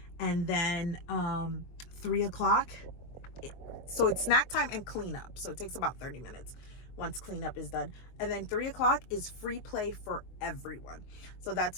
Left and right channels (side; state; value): right; late; 23 ms